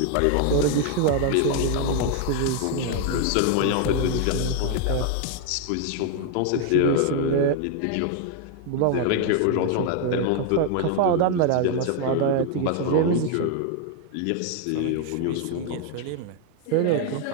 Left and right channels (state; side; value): different; both; correlation 0.00